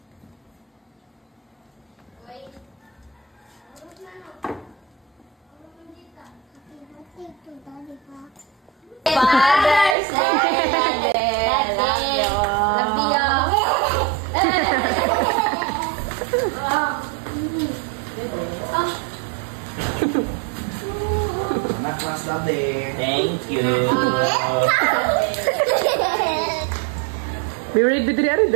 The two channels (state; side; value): drops out; left; at 10.0 s